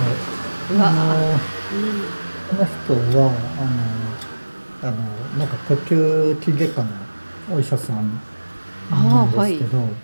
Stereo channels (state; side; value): inverted; both; correlation -1.00